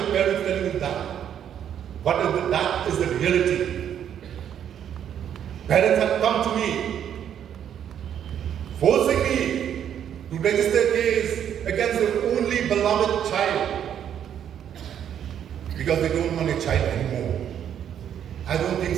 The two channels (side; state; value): left; quieter; 9.4 dB